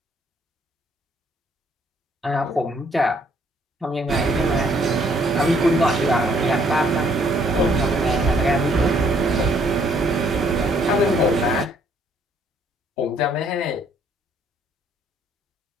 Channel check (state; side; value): normal; both; correlation 0.66